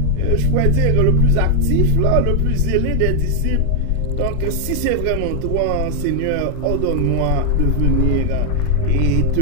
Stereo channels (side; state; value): both; different; correlation 0.00